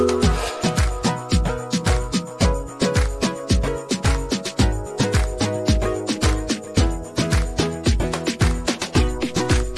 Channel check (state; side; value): identical; both; correlation 1.00